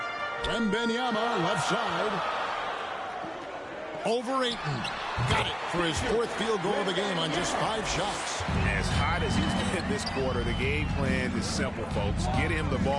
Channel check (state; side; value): identical; both; correlation 1.00